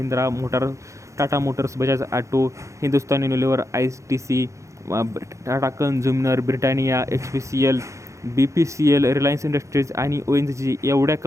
motor, Tata Motors, Bajaj auto, Hindustan Unilever, ITC, Tata consumer, Britannia, HPCL, BPCL, Reliance industries आणि ONGC एवढ्या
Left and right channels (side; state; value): left; late; 0.15 ms